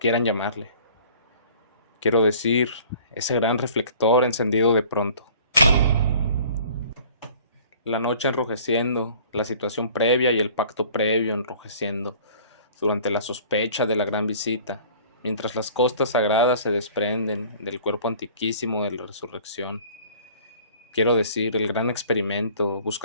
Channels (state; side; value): inverted; both; correlation -0.50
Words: llamarle. Quiero decir, ese gran reflector encendido de pronto. La noche enrojeciendo, la situación previa y el pacto previo enrojeciendo, durante la sospecha de la gran visita, mientras las costas sagradas se desprenden del cuerpo antiquísimo de la resurrección. Quiero decir, el gran experimento,